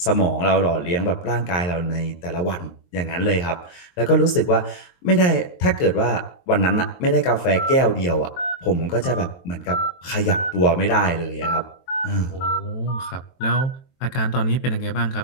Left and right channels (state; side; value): late; right; 23 ms